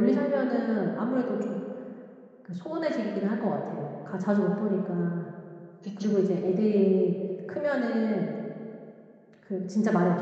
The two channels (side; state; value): both; identical; correlation 1.00